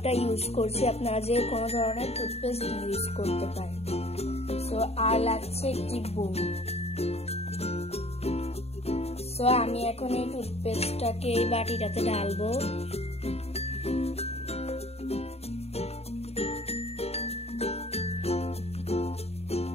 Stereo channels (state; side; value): late; right; 0.30 ms